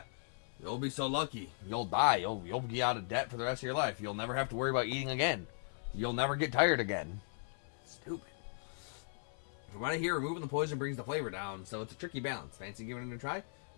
you'll be so lucky. You'll die. You'll be out of debt for the rest of your life. You'll never have to worry about eating again. You'll never get tired again. Stupid. From what I hear, removing the poison brings the flavor down, so it's a tricky balance. Fancy giving it a try?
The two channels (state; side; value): silent; right; 53 dB below the other